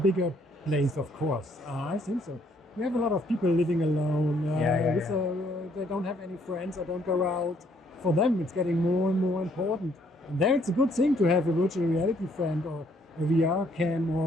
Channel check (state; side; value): normal; both; correlation 0.67